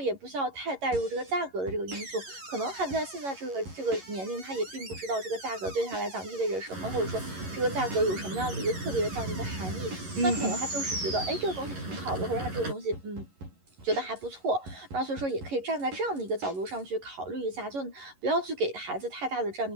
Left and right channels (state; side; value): late; left; 11 ms